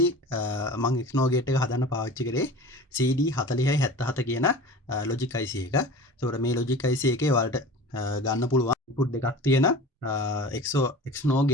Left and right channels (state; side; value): normal; both; correlation 0.38